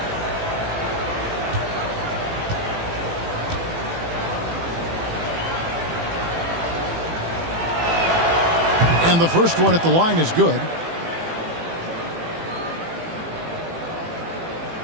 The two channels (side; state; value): left; late; 18 ms